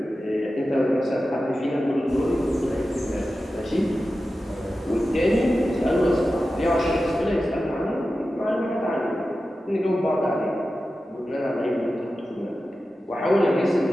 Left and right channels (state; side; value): normal; both; correlation 0.93